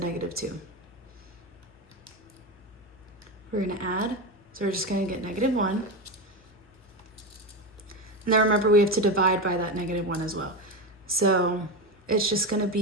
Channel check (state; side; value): normal; both; correlation 0.17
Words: 2? We're gonna add, so we're just gonna get negative 1. And then remember we have to divide by that negative 1 as well. So it's just gonna